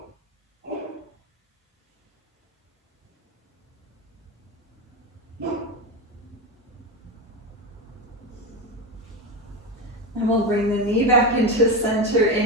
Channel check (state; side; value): normal; both; correlation 0.17